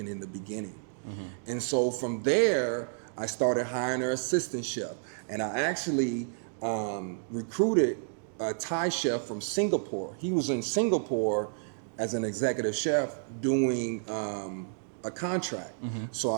in the beginning. Mm-hmm. And so from there, I started hiring an assistant chef, and I actually recruited a Thai chef from Singapore. He was in Singapore as an executive chef doing a contract. So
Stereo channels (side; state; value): left; silent; digital silence